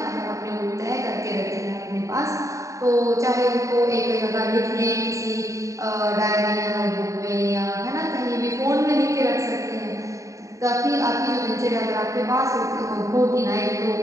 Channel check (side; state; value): left; late; 0.16 ms